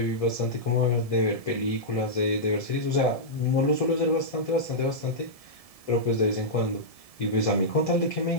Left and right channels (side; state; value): right; late; 1.7 ms